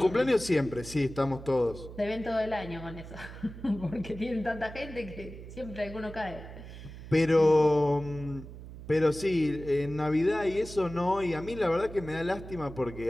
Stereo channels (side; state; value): right; noise; hum, 13 dB below the sound